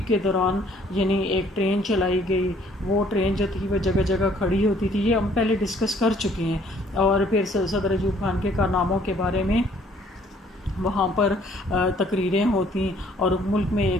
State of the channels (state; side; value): normal; both; correlation 0.61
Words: کے دوران یعنی ایک ٹرین چلائی گئی. وہ ٹرین جو تھی وہ جگہ جگہ کھڑی ہوتی تھی. یہ ہم پہلے ڈسکس کر چکے ہیں. اور پھر صدر ایوب خان کے کارناموں کے بارے میں وہاں پر تقریریں ہوتی اور ملک میں